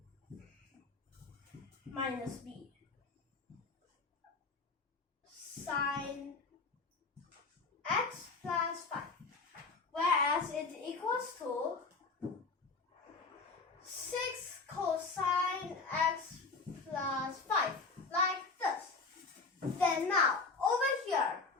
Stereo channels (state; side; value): quieter; right; 4.1 dB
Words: minus B sine x plus 5. Whereas it equals to 6 cosine x plus 5, like this. Then now, over here,